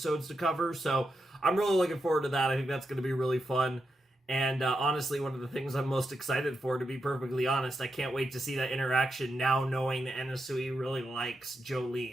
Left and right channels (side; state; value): both; normal; correlation 0.86